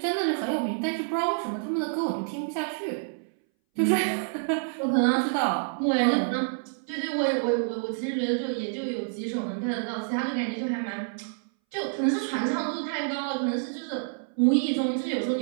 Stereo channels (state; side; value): silent; left; 59 dB below the other